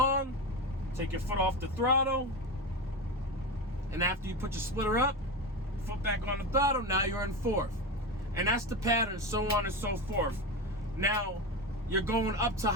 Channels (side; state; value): both; normal; correlation 0.20